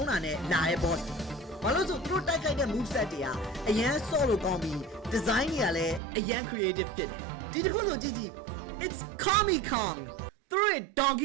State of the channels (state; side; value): drops out; left; at 6.0 s